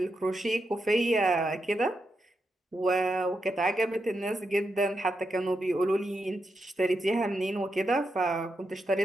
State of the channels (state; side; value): normal; both; correlation 0.85